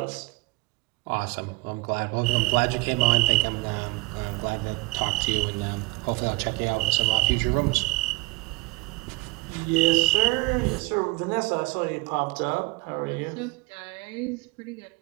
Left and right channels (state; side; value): quieter; left; 23.7 dB